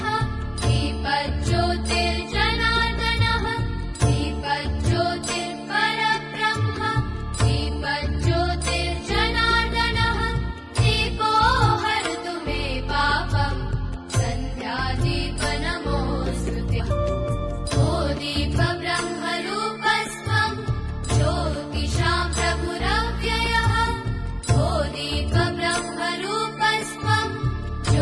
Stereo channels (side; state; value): both; identical; correlation 1.00